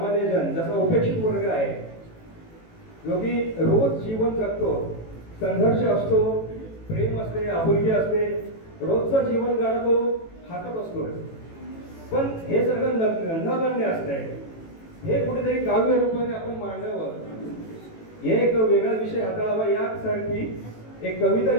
जन, जसा उपेक्षित वर्ग आहे जो की रोज जीवन जगतो, संघर्ष असतो, प्रेम असते, आपुलकी असते, रोजचं जीवन गाणं हातात असतो, पण हे सगळं नगण्य असतंय. हे कुठेतरी काव्य रूपाने आपण मांडावं, हे एक वेगळा विषय हाताळावा यासाठी एक कविता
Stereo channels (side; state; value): right; late; 18 ms